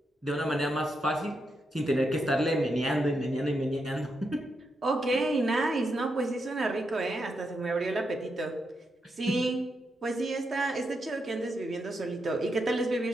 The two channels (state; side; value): normal; both; correlation 0.83